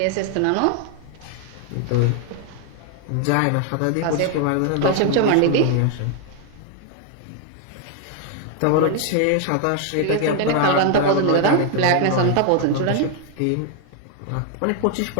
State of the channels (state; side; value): different; both; correlation 0.00